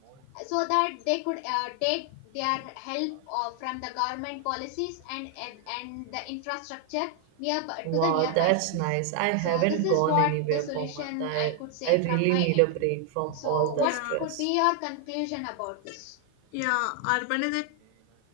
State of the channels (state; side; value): different; both; correlation 0.00